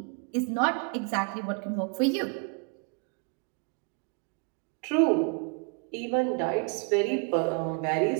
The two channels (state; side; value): quieter; left; 35.4 dB